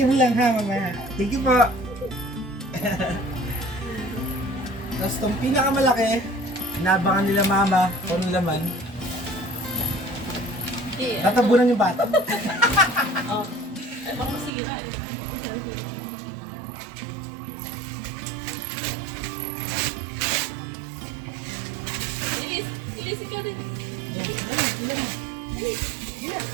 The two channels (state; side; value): drops out; left; at 14.5 s